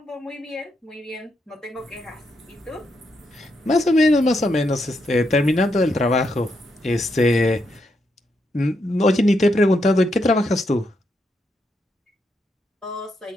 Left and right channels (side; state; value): both; normal; correlation 0.80